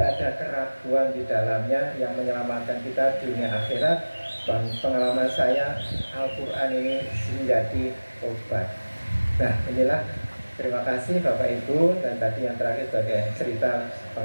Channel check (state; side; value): inverted; both; correlation -1.00